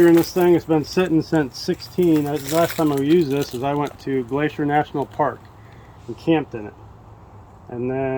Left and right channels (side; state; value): both; identical; correlation 1.00